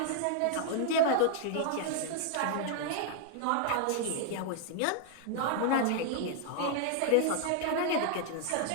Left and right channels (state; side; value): different; both; correlation 0.00